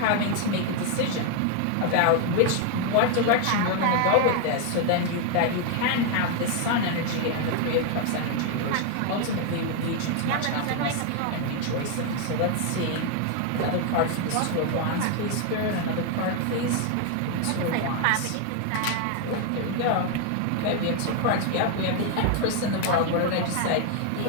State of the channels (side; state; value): both; different; correlation 0.00